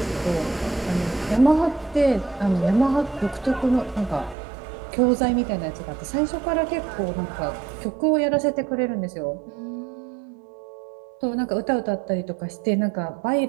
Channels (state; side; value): drops out; left; at 4.4 s